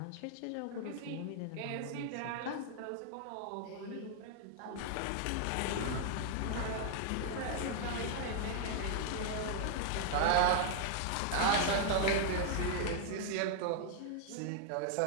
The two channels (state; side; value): different; both; correlation -0.01